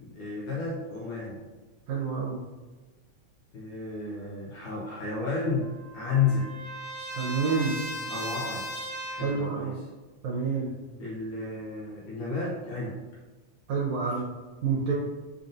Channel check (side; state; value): both; normal; correlation -0.02